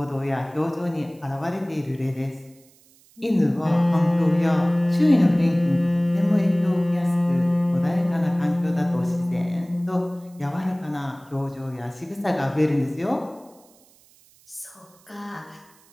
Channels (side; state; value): right; noise; hiss, 29 dB below the sound